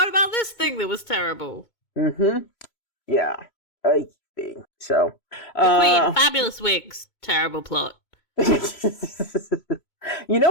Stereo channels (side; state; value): right; late; 3.0 ms